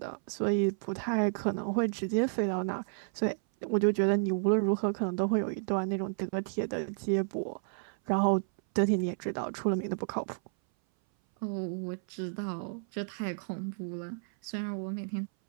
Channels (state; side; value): silent; left; 57 dB below the other